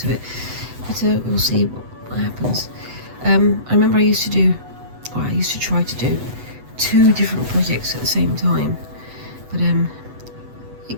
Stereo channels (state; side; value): late; left; 8.0 ms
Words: it, but we'll see what happens. I remember I used to try to do 2 different projects at the same time, but it